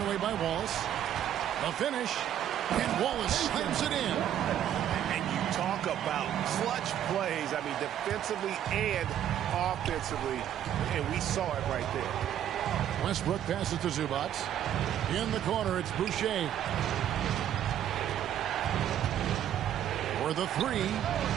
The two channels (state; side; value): quieter; left; 10.7 dB